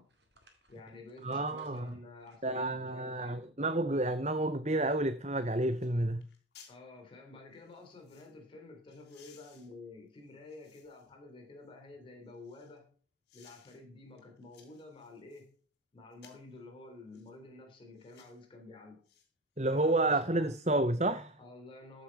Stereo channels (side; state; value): both; normal; correlation 0.29